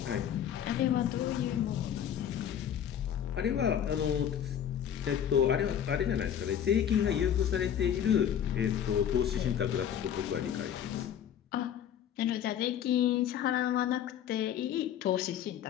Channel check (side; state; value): right; quieter; 9.5 dB